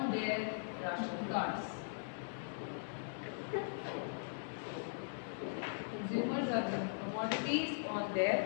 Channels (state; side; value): silent; right; digital silence